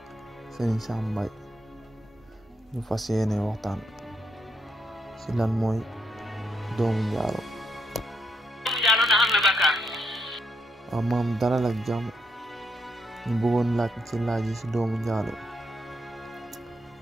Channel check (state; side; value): normal; both; correlation 0.79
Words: Serigne Sam Mbaye ñu fas yéene waxtaan ci lan mooy doomu njaalo. ndax am na bàkkaar. waaw maam dalal ak jàmm ñu bëggoon laaj ci laaj yi ci doomu njaalo.